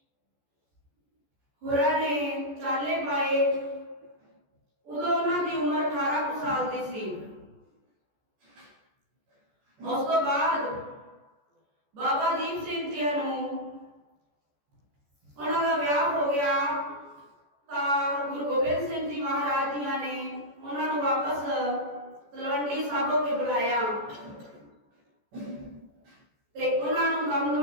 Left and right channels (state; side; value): late; left; 14 ms